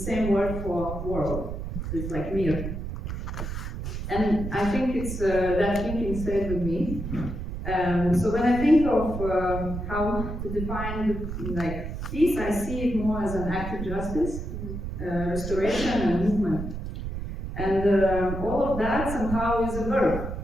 word for world. It's like mir. And I think it's that thinking stayed with me. So when I think of how to define peace, I see it more as an act of justice, restoration and movement. And all of that somehow is a verb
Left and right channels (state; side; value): noise; right; rumble, 6 dB below the sound